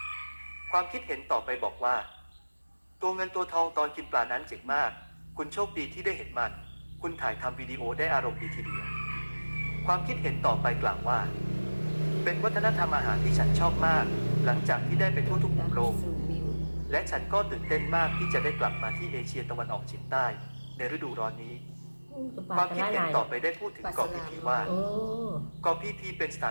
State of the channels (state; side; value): inverted; both; correlation -1.00